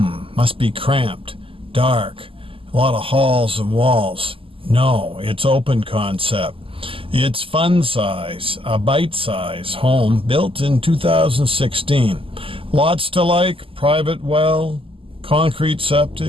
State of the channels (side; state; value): left; late; 0.26 ms